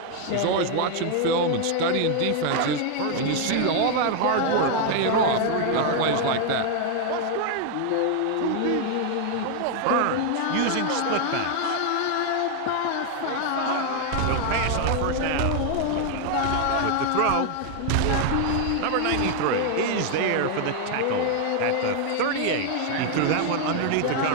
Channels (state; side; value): different; both; correlation 0.00